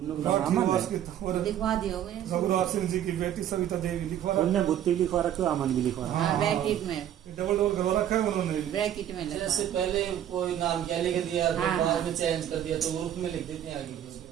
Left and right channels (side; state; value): left; quieter; 10.8 dB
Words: लोग नाम अमन राठीवास है। की तंवर लिखवा दियोगे रघुराज सिंह जी की बेटी सविता देवी लिखवा रखा पुण्य बुद्धि लिखवा रखे अमन भी लिखवा रखा। हाँ ब्रैकेट में, है, डबल डबल करवा रखा है उन्होंने भी। ब्रैकेट में लिखा जैसे पहले कोई नाम क्या लिख दिया तो हाँ, बाद हाँ। में चेंज कर दिया तो ग्रुप में लिख देते हैं आगे भी।